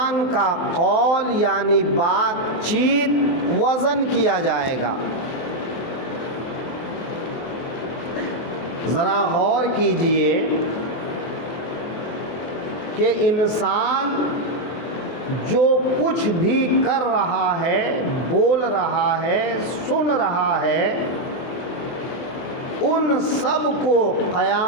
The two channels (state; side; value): late; right; 24 ms